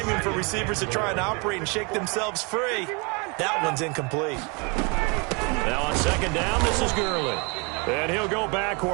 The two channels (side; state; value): left; quieter; 31.2 dB